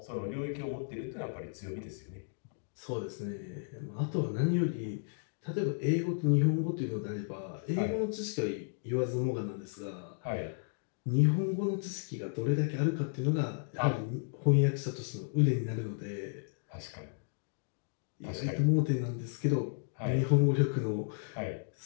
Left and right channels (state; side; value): silent; right; digital silence